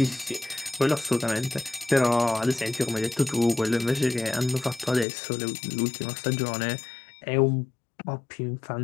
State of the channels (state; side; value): drops out; right; at 5.1 s